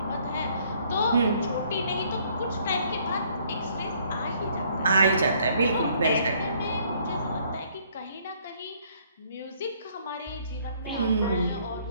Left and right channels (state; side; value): inverted; both; correlation -0.63